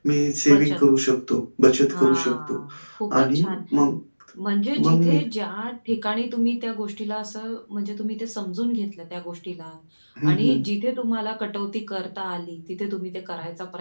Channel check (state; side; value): inverted; both; correlation -1.00